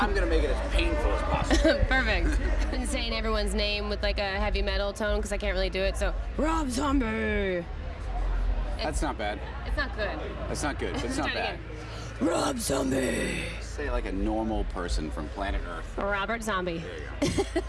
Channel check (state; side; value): identical; both; correlation 1.00